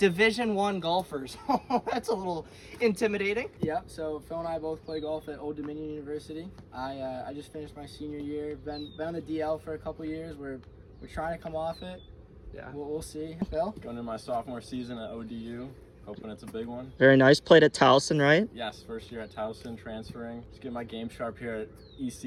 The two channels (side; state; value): both; identical; correlation 1.00